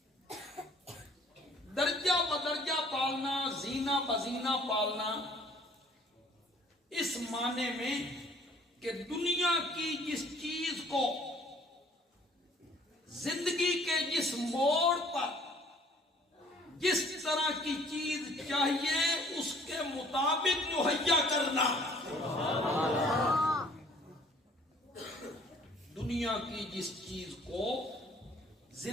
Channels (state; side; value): normal; both; correlation 0.56